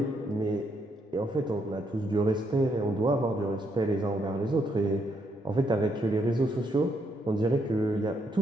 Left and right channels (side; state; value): both; normal; correlation 0.76